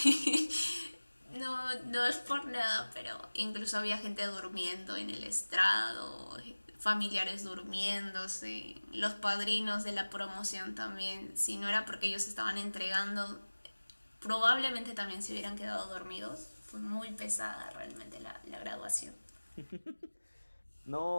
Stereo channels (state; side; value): inverted; both; correlation -1.00